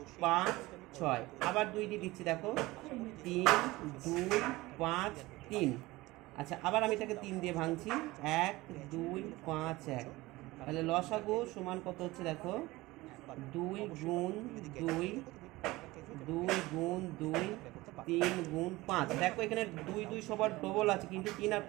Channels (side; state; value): left; quieter; 19.9 dB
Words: 5, 6। আবার 2 দিয়ে দিচ্ছি, দেখো 3, 2, 5, 3। আচ্ছা, আবার আমি এটাকে 3 দিয়ে ভাঙছি, 1, 2, 5, 1। তাহলে লসাগু সমান কত হচ্ছে, দেখো 2 গুণ 2, 2 গুণ 2, 3 গুণ 5। দেখো এখানে 2 2 সবার ডবল আছে, কিন্তু 3 আর